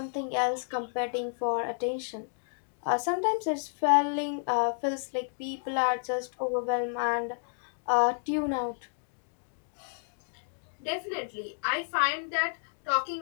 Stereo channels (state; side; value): silent; right; digital silence